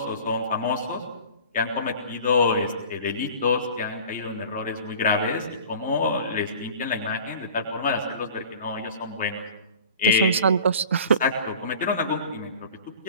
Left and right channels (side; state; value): both; inverted; correlation -0.41